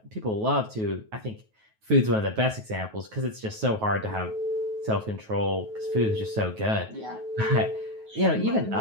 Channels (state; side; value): late; left; 9.3 ms